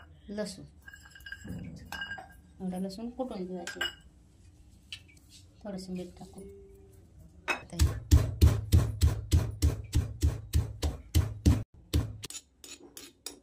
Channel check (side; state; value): both; identical; correlation 1.00